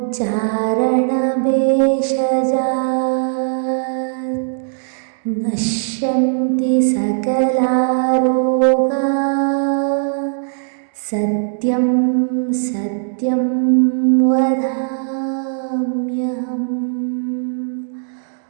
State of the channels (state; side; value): silent; left; digital silence